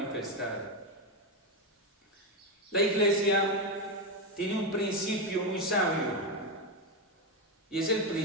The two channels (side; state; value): both; normal; correlation 0.09